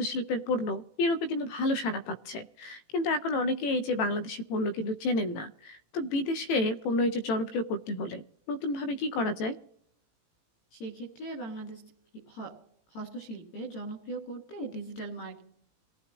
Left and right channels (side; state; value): right; late; 18 ms